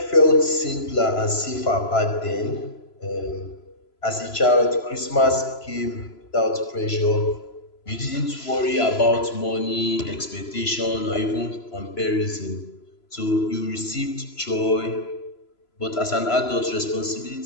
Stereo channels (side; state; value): right; late; 3.0 ms